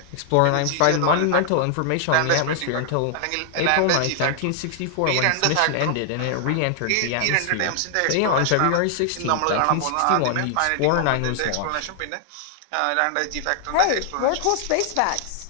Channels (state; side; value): different; both; correlation 0.00